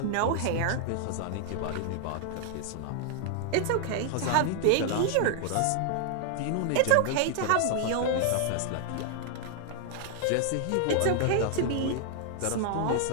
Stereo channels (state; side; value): different; both; correlation 0.00